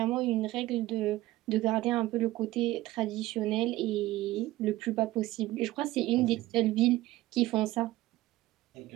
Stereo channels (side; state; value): left; quieter; 17.0 dB